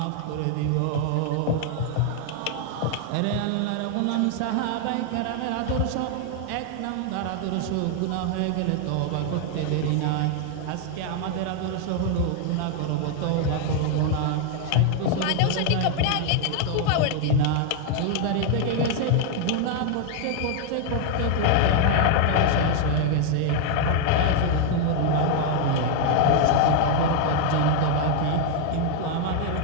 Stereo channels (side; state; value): both; different; correlation 0.00